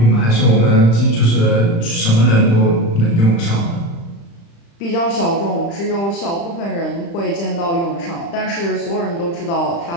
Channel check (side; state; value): right; late; 35 ms